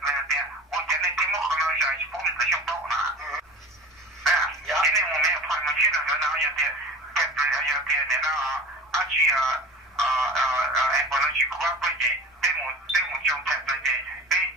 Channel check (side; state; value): both; normal; correlation 0.38